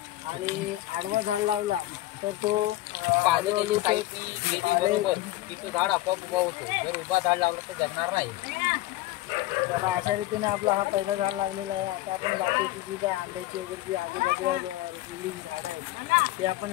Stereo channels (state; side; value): quieter; right; 16.5 dB